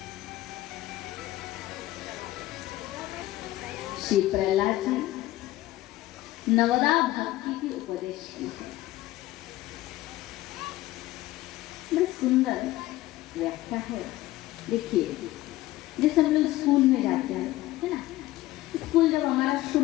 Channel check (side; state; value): right; quieter; 16.5 dB